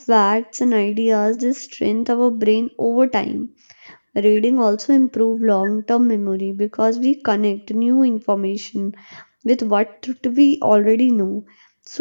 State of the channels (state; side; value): inverted; both; correlation -1.00